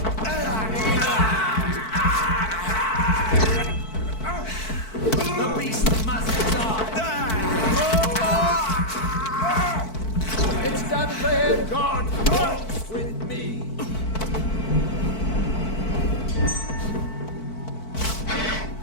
The beast must die! It's done for him! God walks with me!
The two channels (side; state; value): right; late; 4.5 ms